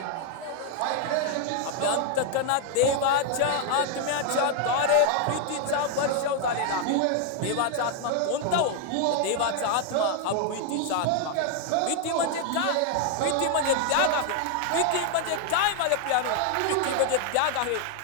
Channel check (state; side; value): different; both; correlation 0.00